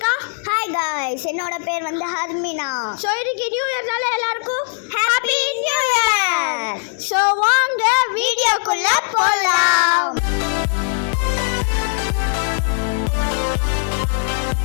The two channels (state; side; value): silent; right; 63 dB below the other